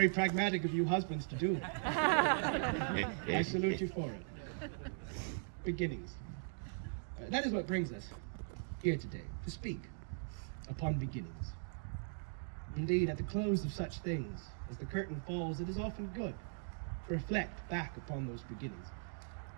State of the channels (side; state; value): left; silent; digital silence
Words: pragmatic of you husbands to do. I salute you for it. Beginnings. That is what brings us here today, to speak upon beginnings. Indeed, at the close of such things, as the curtain falls, it is often good to reflect back upon those beginnings.